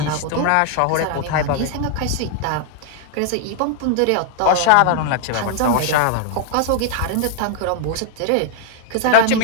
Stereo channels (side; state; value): both; different; correlation 0.00